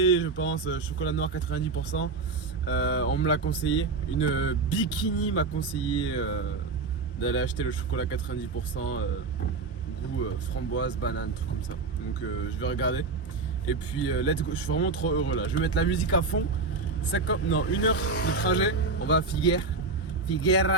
je pense, chocolat noir 90%. On me l'a conseillé, une bikini m'a conseillé d'aller acheter le chocolat 90%, goût framboise, banane, truc comme ça. Donc je vais regarder. Et puis let's go, je suis vraiment trop heureux là. Je vais mettre la musique à fond. 1 heure de trajet. On va à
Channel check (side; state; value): left; quieter; 4.0 dB